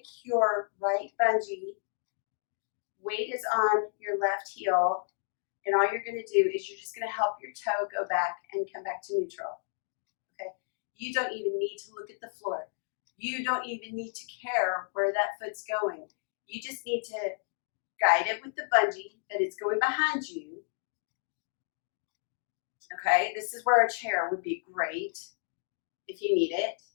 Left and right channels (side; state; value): right; silent; digital silence